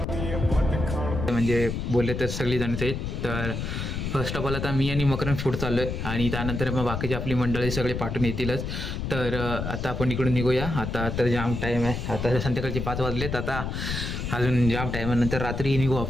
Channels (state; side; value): noise; left; rumble, 4 dB below the sound